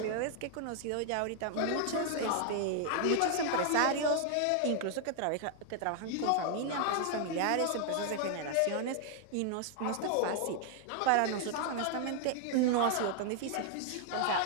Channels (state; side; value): different; both; correlation 0.00